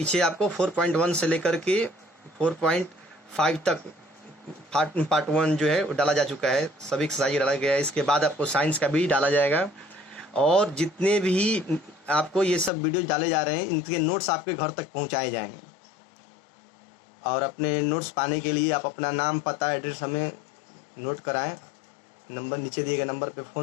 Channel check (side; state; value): right; drops out; at 12.7 s